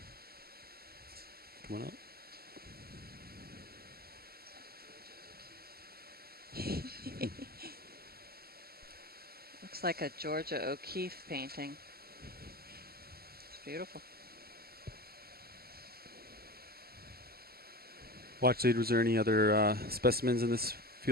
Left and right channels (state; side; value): late; left; 0.45 ms